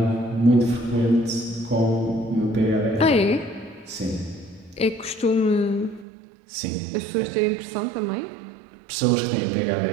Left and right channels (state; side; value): drops out; left; at 6.1 s